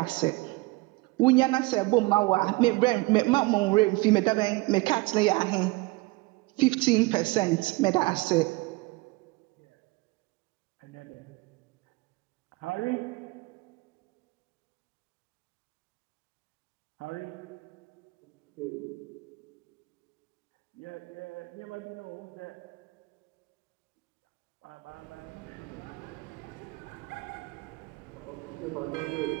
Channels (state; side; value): quieter; left; 23.3 dB